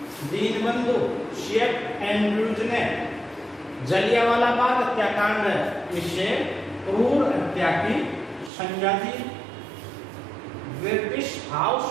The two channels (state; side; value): drops out; left; at 8.5 s